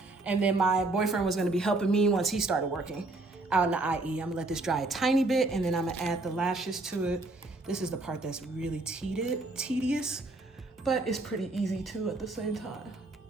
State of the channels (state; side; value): quieter; left; 3.1 dB